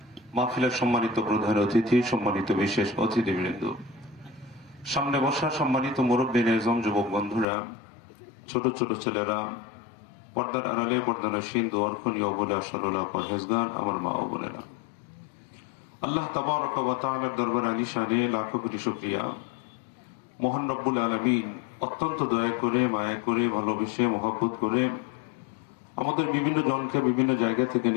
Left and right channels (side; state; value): right; drops out; at 7.5 s